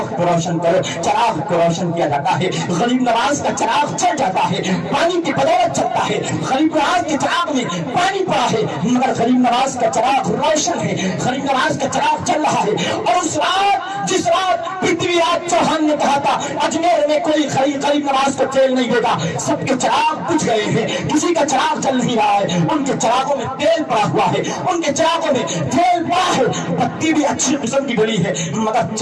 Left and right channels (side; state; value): both; identical; correlation 1.00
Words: کو روشن کرو۔ چراغ کو روشن کیا جاتا ہے، غریب نواز کا چراغ چل جاتا ہے، پانی کی بدولت چلتا ہے۔ غریب نواز کے چراغ میں پانی پڑا ہے مگر غریب نواز کا چراغ روشن ہے، غریب نواز کا چراغ چل رہا ہے۔ اور اس رات جس رات پرتھوی راج چوہان نے کہا تھا اجمیر میں کوئی غریب نواز کو تیل نہیں دے گا، سب کے چراغ بجھ گئے ہیں، کسی کا چراغ چل نہیں رہا ہے، ان کے چراغوں میں تیل پڑا ہوا ہے، ان کے چراغوں میں تیل پڑا ہے، بتی بھی اچھی قسم کی ڈلی ہے مگر